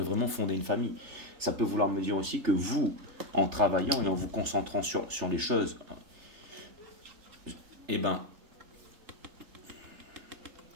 vraiment fonder une famille. Ça peut vouloir me dire aussi que vous, en travaillant et en vous concentrant sur les choses, eh ben,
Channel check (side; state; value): left; late; 3.3 ms